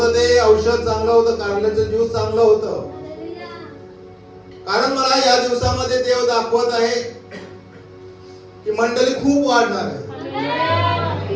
ते औषध चांगलं होतं, कारल्याचं ज्यूस चांगलं होतं. कारण मला या दिवसामध्ये देव दाखवत आहे की मंडळी खूप वाढणार आहे.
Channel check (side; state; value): both; identical; correlation 1.00